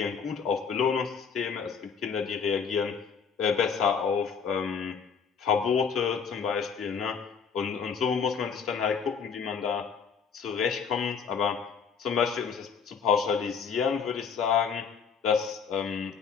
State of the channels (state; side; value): quieter; right; 6.3 dB